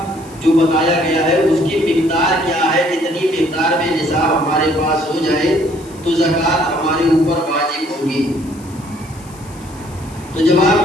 جو بتایا گیا ہے اس کی مقدار کیا ہے، کتنی مقدار میں نصاب ہمارے پاس ہو جائے تو زکوٰۃ ہمارے اوپر واجب ہوگی۔ تو جواب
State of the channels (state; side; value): noise; left; hiss, 23 dB below the sound